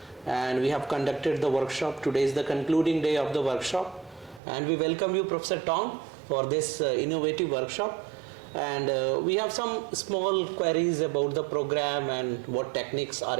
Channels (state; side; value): drops out; left; at 4.4 s